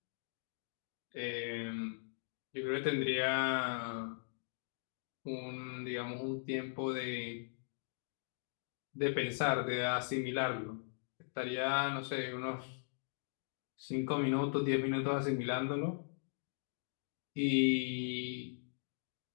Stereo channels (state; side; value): silent; right; digital silence